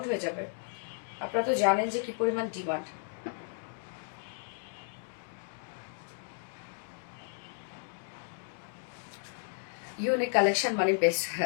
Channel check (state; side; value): silent; right; digital silence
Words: হয়ে যাবে, আপনারা তো জানেন যে কি পরিমাণ ডিমান্ড। ইউনিক কালেকশন মানে বেস্ট।